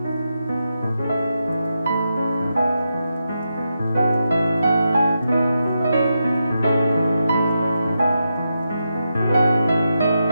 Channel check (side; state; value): both; inverted; correlation -0.86